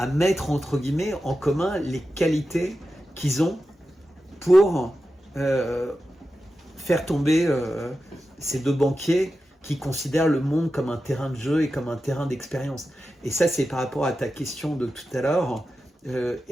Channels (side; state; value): both; normal; correlation 0.91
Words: mettre, entre guillemets, en commun les qualités qu'ils ont pour faire tomber ces deux banquiers qui considèrent le monde comme un terrain de jeu et comme un terrain d'expérience. Et ça, c'est par rapport à ta question de tout à l'heure,